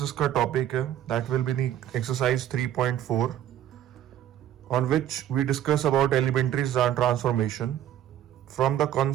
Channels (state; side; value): quieter; left; 11.3 dB